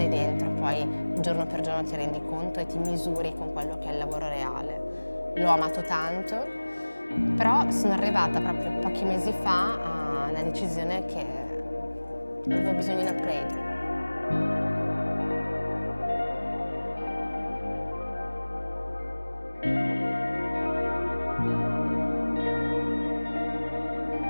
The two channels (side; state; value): both; inverted; correlation -1.00